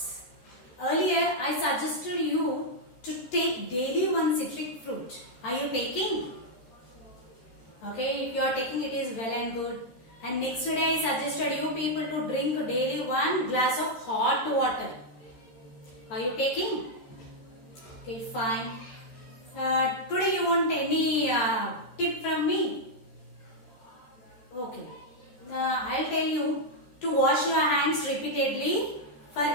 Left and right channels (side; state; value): right; late; 13 ms